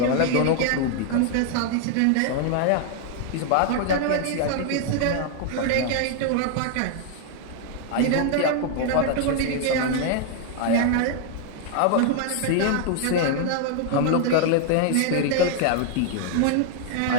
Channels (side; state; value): both; different; correlation 0.00